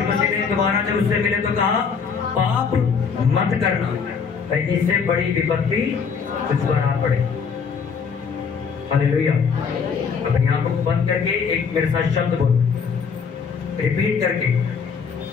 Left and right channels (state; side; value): quieter; right; 5.9 dB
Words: मसीह ने दोबारा जब उससे मिले तो कहा, पाप मत करना, कहीं इससे बड़ी विपत्ति तुझ पर आ पड़े। हालेलुया। अपनी आंखों को बंद करके एक मेरे साथ शब्द बोलो, रिपीट करके,